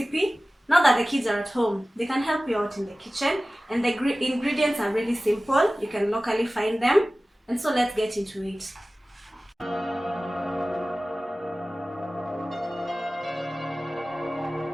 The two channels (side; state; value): both; normal; correlation 0.97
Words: Now that the kids are at home, they can help you out in the kitchen, and the ingredients are really simple. You can locally find them, and so let's get into it.